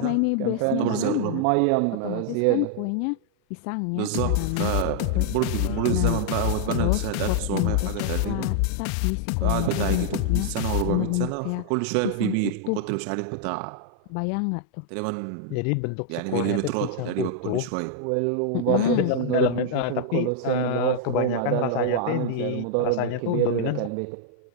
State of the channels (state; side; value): different; both; correlation -0.01